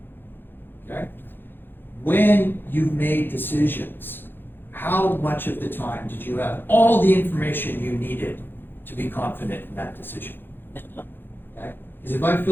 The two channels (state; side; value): late; right; 0.10 ms